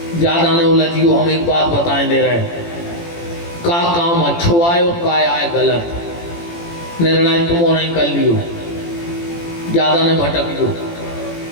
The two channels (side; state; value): right; late; 18 ms